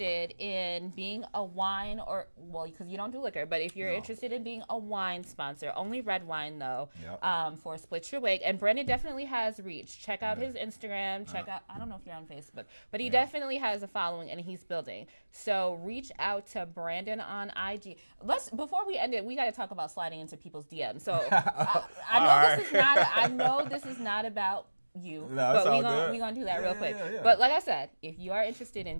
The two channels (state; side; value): inverted; both; correlation -1.00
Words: in being a wine because you don't do liquor, but if you're interested in being a wine sponsor, only red wine though, for Split Yo WiGG. And Brandon definitely has reach. Check out his Instagram. Check out, I don't know if you're on Facebook, but he definitely has a following and he's building. So reach out to Brandon on IG. Before we end it, we got to talk about sliding into people's DMs. So I know this is not about you, but we gonna do that real quick. Yeah. But like I said, if you are interested in